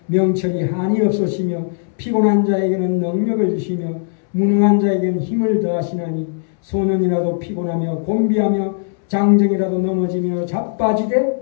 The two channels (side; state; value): right; silent; 67 dB below the other